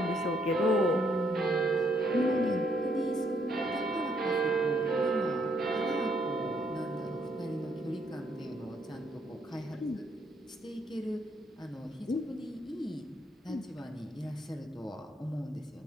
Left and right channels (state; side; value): normal; both; correlation 0.72